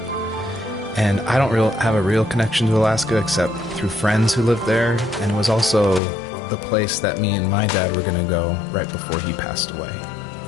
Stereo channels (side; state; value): right; drops out; at 6.0 s